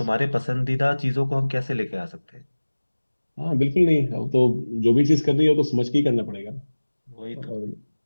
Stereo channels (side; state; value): both; inverted; correlation -1.00